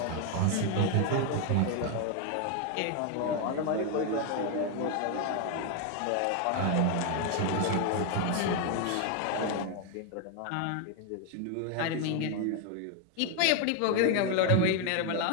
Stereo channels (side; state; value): both; different; correlation 0.01